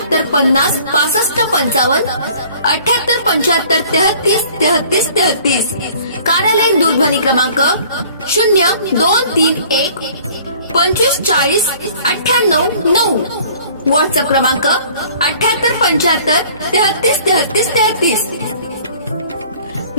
50 65 55 78 75 33 33 33। कार्यालयीन दूरध्वनी क्रमांक 0231 25 40 98 9। व्हॉट्सअप क्रमांक 78 75 33 33 33।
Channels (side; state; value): both; inverted; correlation -0.52